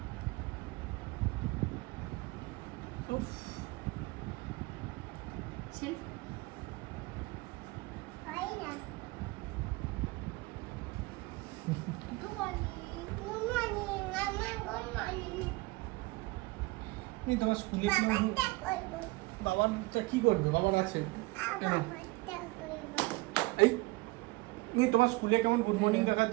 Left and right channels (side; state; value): left; quieter; 23.4 dB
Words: উফ, selfie. Good morning. Good morning. Mama, good morning. এই তোমার স্কুলে কি বাবাটা করবো। বাবারটা কি করবে? বাবার আছে। বাবাটা করবো। এই এই তোমার স্কুলে কেমন গুড মর্নিং